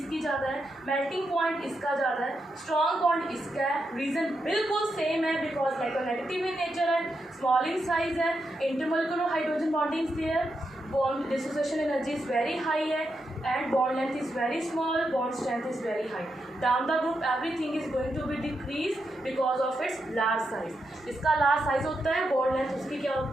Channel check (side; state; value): both; normal; correlation 0.84